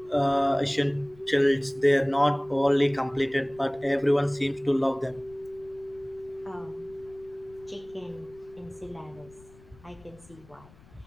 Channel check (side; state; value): left; noise; rumble, 25 dB below the sound